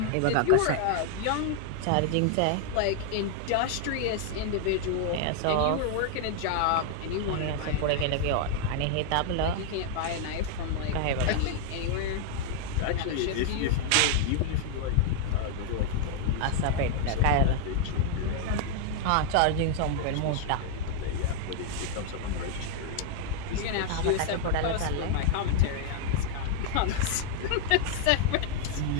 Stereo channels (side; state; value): both; different; correlation 0.00